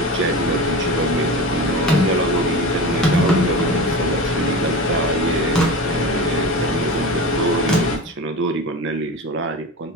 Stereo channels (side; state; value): both; normal; correlation 0.29